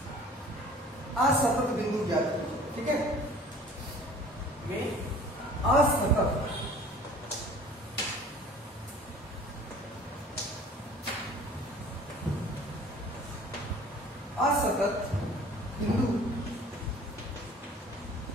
असतत बिंदु ज्ञात कीजिए। ठीक है, में असतत असतत बिंदु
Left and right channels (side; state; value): both; normal; correlation 0.48